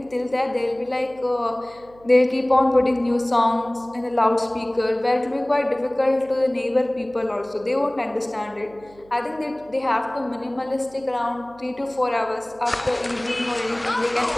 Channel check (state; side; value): noise; right; hum, 26 dB below the sound